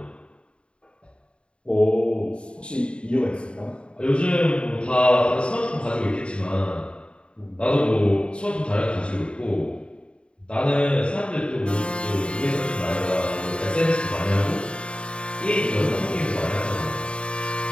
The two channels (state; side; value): late; right; 0.055 ms